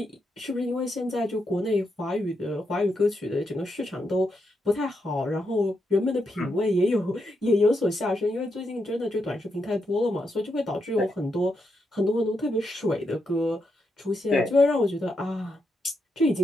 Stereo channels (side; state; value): both; normal; correlation 0.82